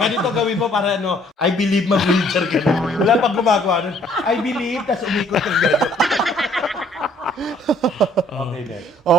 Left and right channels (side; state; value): both; normal; correlation 0.61